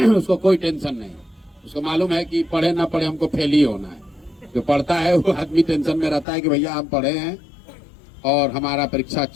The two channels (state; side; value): drops out; right; at 6.2 s